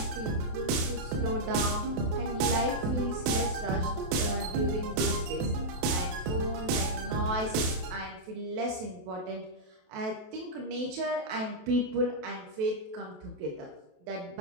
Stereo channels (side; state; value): left; late; 27 ms